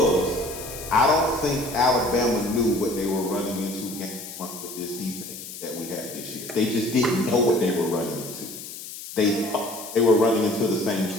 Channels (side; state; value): left; noise; hiss, 11 dB below the sound